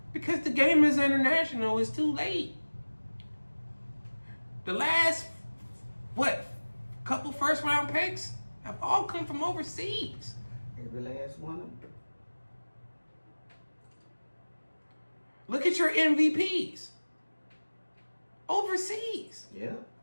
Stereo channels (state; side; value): inverted; both; correlation -1.00